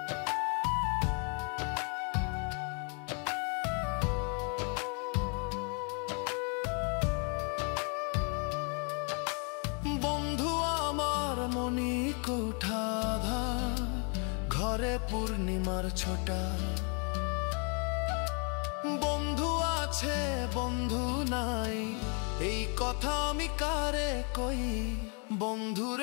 বন্ধু আমার মনি কোঠাধা ঘরে পূর্ণিমার ছোটা বন্ধু আছে বন্ধু নাই এই কথা আমি কারে কই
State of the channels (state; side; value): quieter; right; 37.1 dB